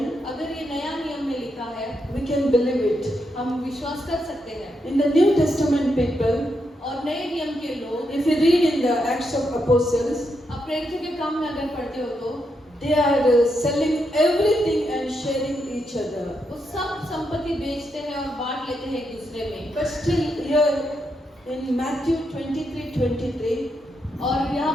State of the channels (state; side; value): normal; both; correlation 0.82